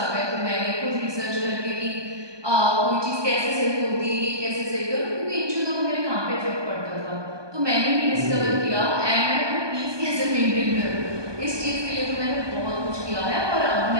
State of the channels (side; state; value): left; late; 1.2 ms